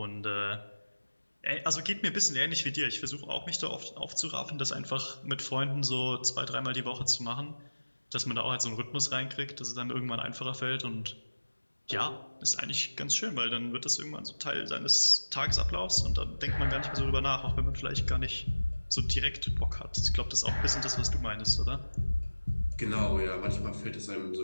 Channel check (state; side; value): inverted; both; correlation -1.00